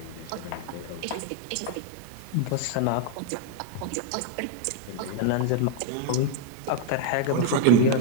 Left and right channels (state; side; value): different; both; correlation 0.01